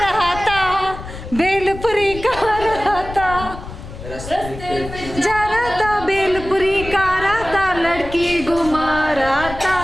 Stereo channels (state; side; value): noise; left; rumble, 12 dB below the sound